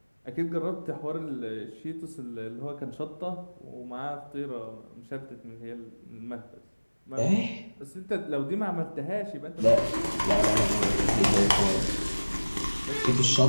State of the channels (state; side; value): inverted; both; correlation -1.00